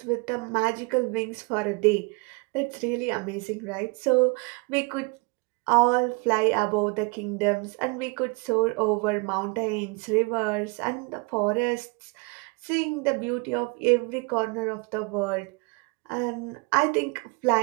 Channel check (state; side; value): quieter; left; 29.5 dB